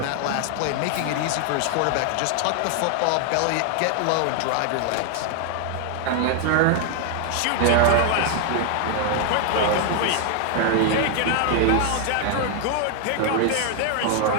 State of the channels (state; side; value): different; both; correlation 0.00